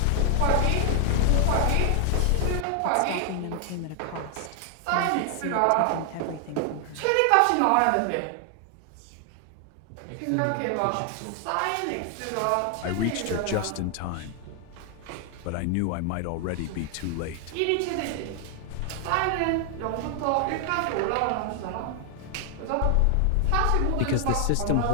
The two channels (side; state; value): both; different; correlation 0.00